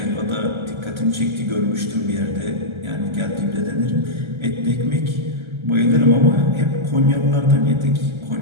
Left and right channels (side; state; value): left; late; 1.3 ms